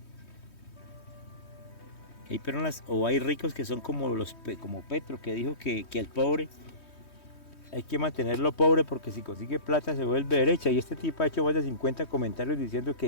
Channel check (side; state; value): right; late; 3.2 ms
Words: hay personas o hay ricos que son como Petro, que dijo que el pobre hay que mantenerlo pobre porque si consigue plata se vuelve derecha, y este tipo ha hecho más de 50 comentarios diciendo